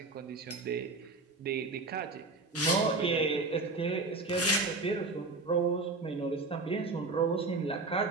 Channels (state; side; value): quieter; left; 3.5 dB